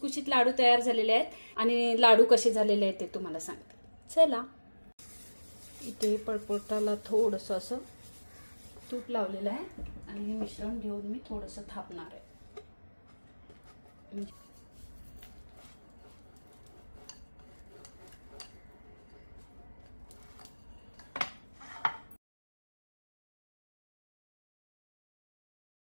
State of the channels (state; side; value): inverted; both; correlation -1.00